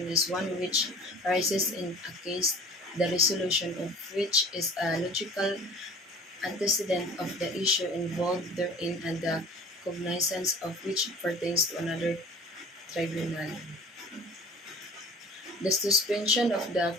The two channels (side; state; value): both; normal; correlation 0.44